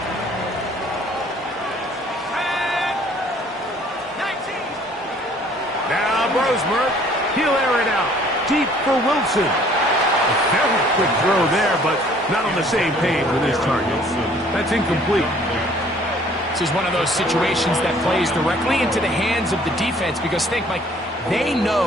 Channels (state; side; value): normal; both; correlation 0.57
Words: Now Brosmer, he'll air it out. Deep for Wilson. A very quick throw there, but not on the same page with his target. That's incomplete. This is one of those situations that plays directly into the hands of the defense because think, Mike, they